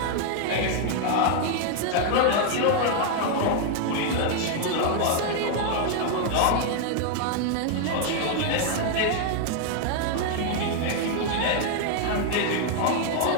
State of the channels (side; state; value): both; different; correlation 0.00